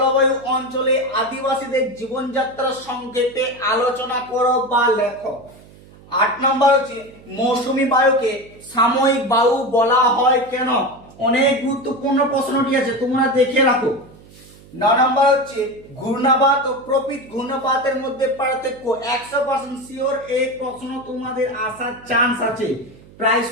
অঞ্চলে আদিবাসীদের জীবনযাত্রা সংক্ষেপে আলোচনা করো বা লেখো। 8 নম্বর হচ্ছে মৌসুমী বায়ুকে সাময়িক বায়ু বলা হয় কেন, অনেক গুরুত্বপূর্ণ প্রশ্নটি আছে, তোমরা দেখে রাখো। 9 নম্বর হচ্ছে ঘূর্ণাবাত ও প্রকৃত ঘূর্ণাবাতের মধ্যে পার্থক্য, 100% শিওর এই প্রশ্ন তোমাদের আসার চান্স আছে, প্রায়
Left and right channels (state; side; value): noise; right; hum, 23 dB below the sound